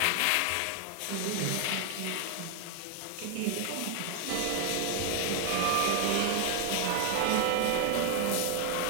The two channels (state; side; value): different; both; correlation 0.00